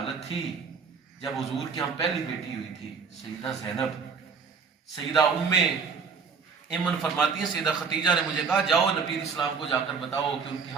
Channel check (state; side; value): quieter; left; 5.5 dB